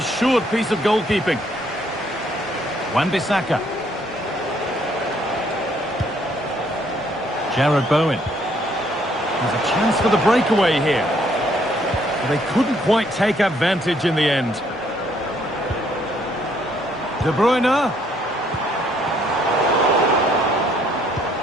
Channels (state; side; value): normal; both; correlation 0.67